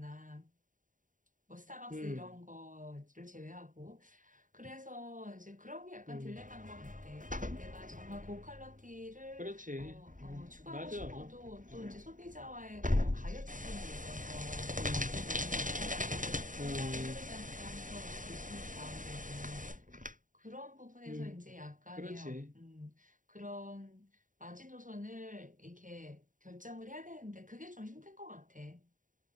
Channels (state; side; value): late; left; 0.38 ms